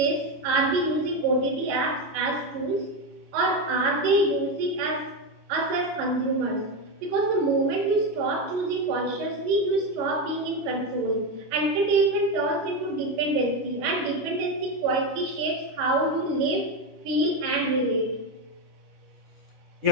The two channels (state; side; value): late; left; 10 ms